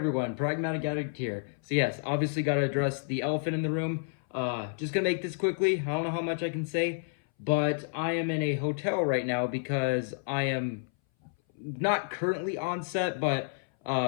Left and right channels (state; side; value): silent; right; 58 dB below the other